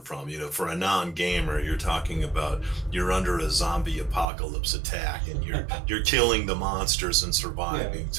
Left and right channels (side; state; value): left; drops out; at 4.2 s